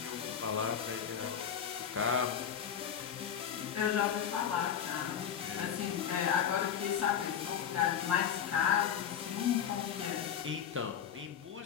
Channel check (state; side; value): quieter; right; 8.5 dB